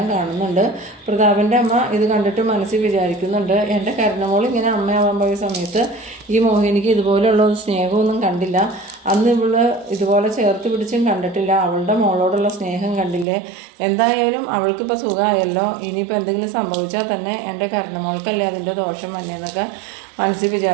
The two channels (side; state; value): left; drops out; at 13.2 s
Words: കാണുന്നുണ്ട്. പ്രതാപൻ്റെ അമ്മ ഇത് കണ്ടിട്ട് മനസ്സിൽ വിചാരിക്കുന്നുണ്ട്, എൻ്റെ കരുണമോൾ ഇങ്ങനെ അമ്മയാവാൻ പോയ സമയത്ത് ഈ മോഹിനിക്ക് ഇതുപോലെയുള്ള സ്നേഹമൊന്നും കണ്ടില്ല, അന്ന് ഇവള് ഇതുപോലെ ചേർത്ത് പിടിച്ചും കണ്ടിട്ടില്ല, അവളുടെ മോളോടുള്ള സ്നേഹം കണ്ടില്ലേ, എന്തായാലും അവൾക്കിപ്പോൾ സുഖമായല്ലോ, ഇനിയിപ്പോൾ എന്തെങ്കിലും സംഭവിച്ചാൽ തന്നെ എൻ്റെ കരുണമോൾക്കല്ലേ അതിൻ്റെ ദോഷം വന്നേന്നൊക്കെ മനസ്സിൽ